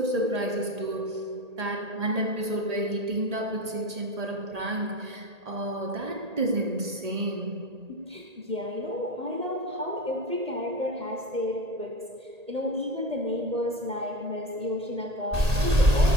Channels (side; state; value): left; late; 1.8 ms